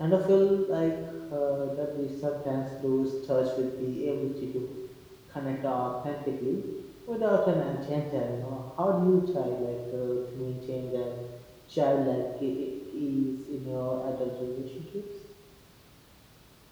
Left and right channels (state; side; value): identical; both; correlation 1.00